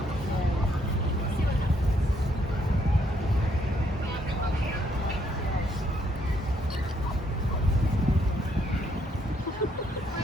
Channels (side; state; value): both; normal; correlation 0.72